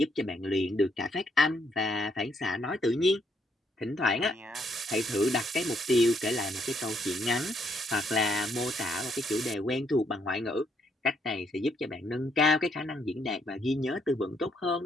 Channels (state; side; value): normal; both; correlation 0.72